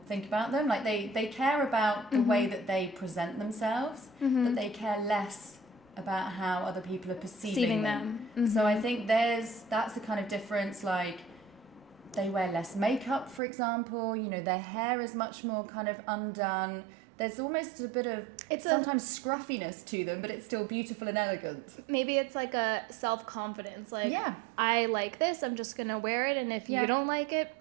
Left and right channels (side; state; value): left; drops out; at 13.4 s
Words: think about them. Like they care about the way that they present themselves, but they care less about how other people are perceiving them. So I think that's the kind of difference. Like they wear less makeup, for example. Their hair is much more kind of undone. There's almost a bit of sometimes scruffiness to them, but it's still beautiful and elegant. Maybe it's like a self-confidence. Like, I like this, I'm just going to wear it, and if you don't like it,